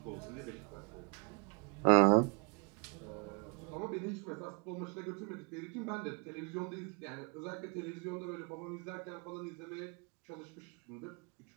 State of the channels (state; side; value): quieter; left; 35.8 dB